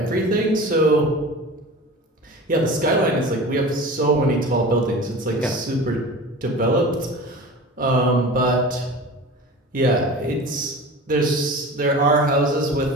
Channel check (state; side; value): normal; both; correlation 0.36